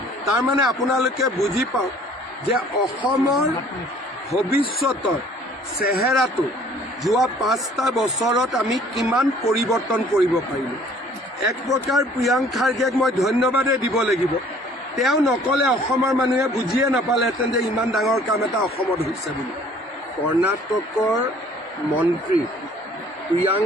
তাৰমানে আপোনালোকে বুজি পাওক যে অসমৰ ভৱিষ্যতৰ চেহেৰাটো যোৱা 5টা বছৰত আমি কিমান পৰিৱৰ্তন কৰিব পাৰিলোঁ। এক প্ৰকাৰ প্ৰিয়াংক খাৰ্গেক মই ধন্যবাদে দিব লাগিব। তেওঁ নকলে অসমৰ মানুহে বুজিয়ে নাপালেহেঁতেন যে ইমান ডাঙৰ কাম এটা অসমত হৈছে বুলি। কৰ্ণাটকৰ মন্ত্ৰী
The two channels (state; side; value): normal; both; correlation 0.55